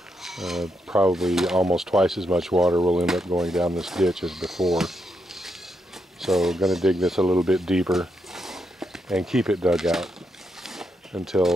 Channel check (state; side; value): normal; both; correlation 0.81